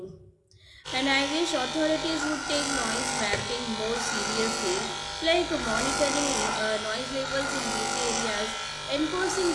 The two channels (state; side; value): identical; both; correlation 1.00